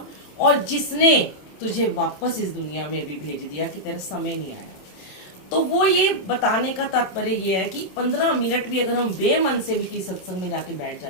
और जिसने तुझे वापस इस दुनिया में भी भेज दिया कि तेरा समय नहीं आया। तो वो ये बताने का तात्पर्य ये है कि 15 मिनट भी अगर हम बेमन से भी किसी सत्संग में जाके बैठ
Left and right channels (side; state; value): right; late; 27 ms